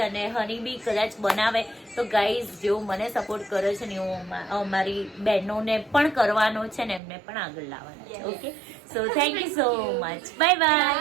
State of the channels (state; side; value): drops out; left; at 7.0 s